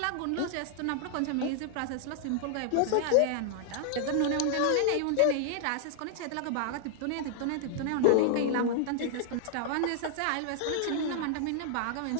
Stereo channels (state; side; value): different; both; correlation 0.00